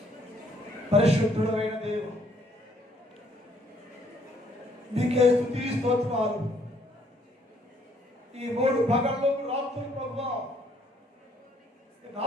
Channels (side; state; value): both; normal; correlation 0.66